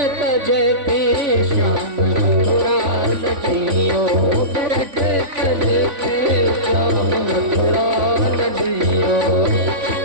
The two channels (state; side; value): late; left; 3.5 ms